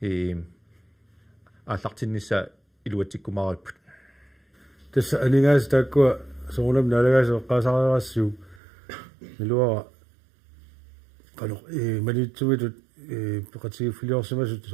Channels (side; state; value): left; drops out; at 8.6 s